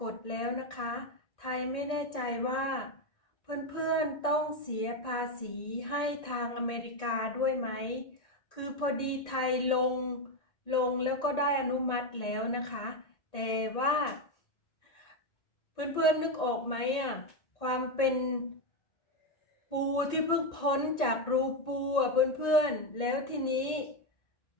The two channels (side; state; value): right; late; 1.8 ms